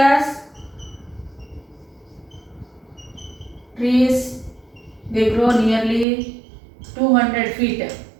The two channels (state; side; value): drops out; left; at 6.1 s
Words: trees, they grow nearly 200 feet.